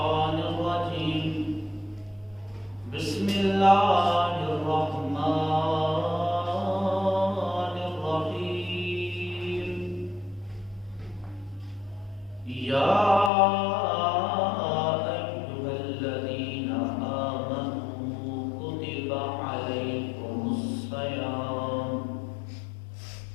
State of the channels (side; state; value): right; drops out; at 13.3 s